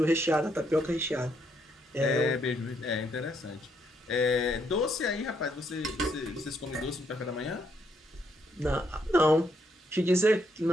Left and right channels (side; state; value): both; normal; correlation 0.74